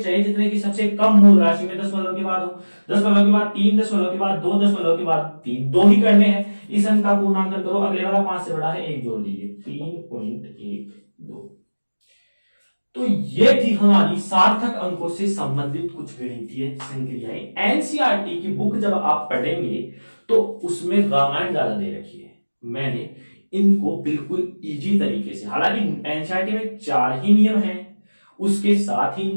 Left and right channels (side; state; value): both; inverted; correlation -1.00